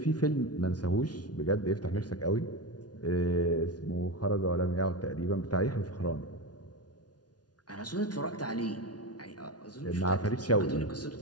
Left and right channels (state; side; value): late; right; 0.69 ms